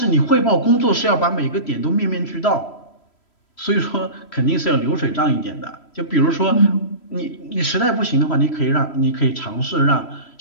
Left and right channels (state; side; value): late; right; 3.1 ms